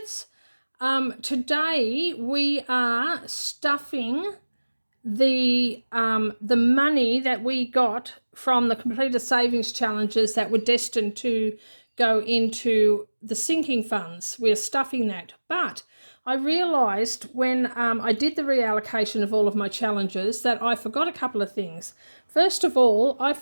Today we are stuffing the money that we got from the completed savings challenges that were destined to go into the sinking funds. We're stuffing that, but I realised when I did the reallocation of all of my challenges that I forgot a couple of things. First of all, I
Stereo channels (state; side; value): inverted; both; correlation -1.00